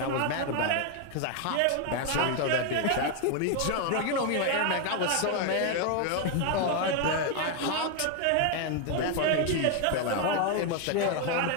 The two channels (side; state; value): both; different; correlation 0.01